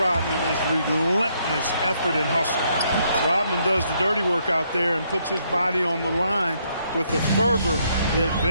is relentless effort and hustle. Rodman does the dirty work out there and puts his body on the line with a fervor that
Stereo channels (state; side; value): inverted; both; correlation -0.72